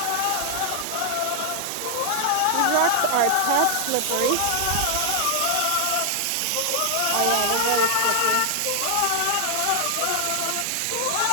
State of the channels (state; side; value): different; both; correlation 0.00